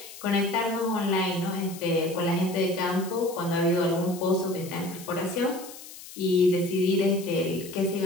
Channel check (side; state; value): left; noise; hiss, 15 dB below the sound